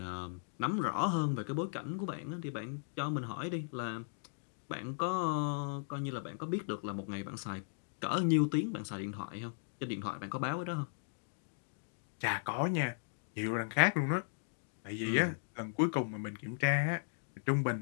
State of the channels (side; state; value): right; silent; digital silence